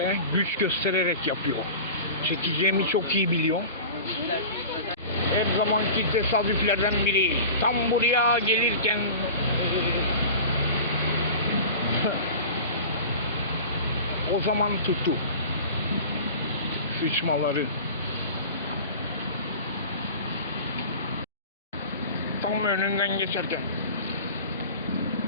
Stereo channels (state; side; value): inverted; both; correlation -0.36